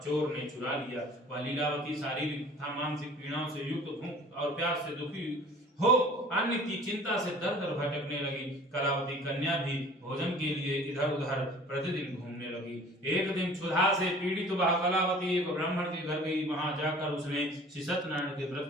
ने चुरा लिया। वह लीलावती शारीरिक तथा मानसिक पीड़ाओं से युक्त भूख और प्यास से दुखी हो अन्न की चिंता से दर दर भटकने लगी। कलावती कन्या भी भोजन के लिए इधर उधर प्रतिदिन घूमने लगी। एक दिन क्षुधा से पीड़ित वह कलावती एक ब्राह्मण के घर गई। वहां जाकर उसने श्री सत्यनारायण के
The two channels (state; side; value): normal; both; correlation 0.47